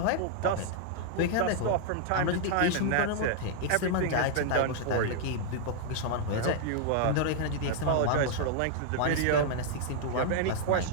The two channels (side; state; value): both; different; correlation 0.00